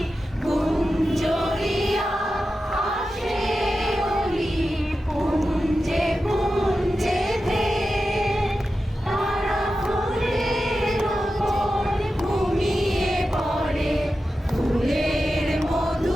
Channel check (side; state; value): both; normal; correlation 0.92